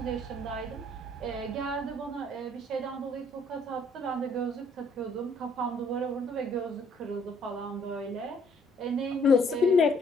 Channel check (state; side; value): normal; both; correlation 0.64